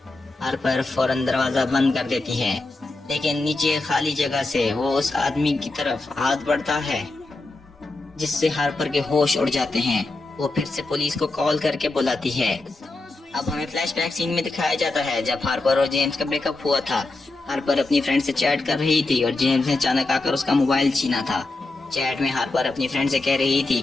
ہارپر فوراً دروازہ بند کر دیتی ہے، لیکن نیچے خالی جگہ سے وہ اس آدمی کی طرف ہاتھ بڑھتا ہے جس سے ہارپر کے ہوش اڑ جاتے ہیں۔ وہ پھر سے پولیس کو کال کر کے بلاتی ہے۔ اب ہمیں فلیش بیک سین میں دکھایا جاتا ہے جب ہارپر اور جیمز کا بریک اپ ہوا تھا۔ ہارپر اپنی فرینڈ سے چیٹ کر رہی تھی اور جیمز نے اچانک آ کر اس کا موبائل چھینا تھا۔ چیٹ میں ہارپر اپنی فرینڈ سے کہہ رہی تھی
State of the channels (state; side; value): quieter; right; 3.1 dB